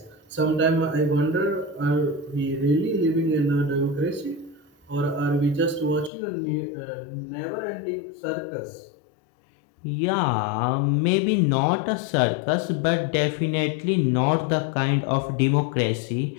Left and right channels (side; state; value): right; drops out; at 6.1 s